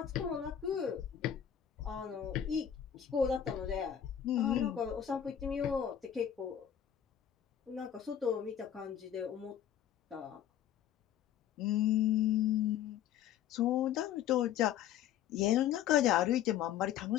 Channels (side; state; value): right; quieter; 10.1 dB